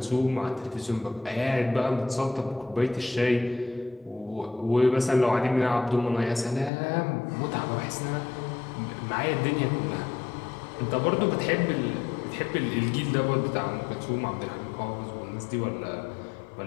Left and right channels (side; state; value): right; drops out; at 6.7 s